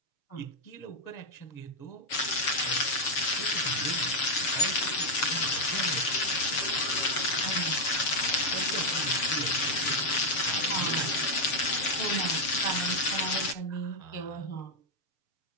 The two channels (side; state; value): right; late; 6.9 ms